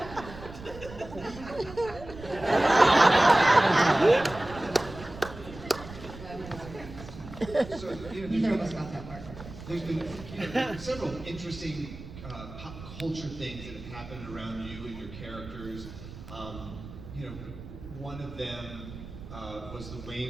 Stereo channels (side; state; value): right; noise; rumble, 14 dB below the sound